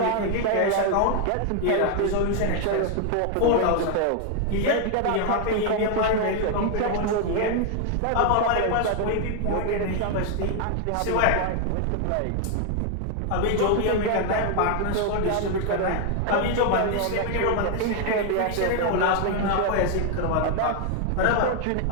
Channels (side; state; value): both; different; correlation 0.00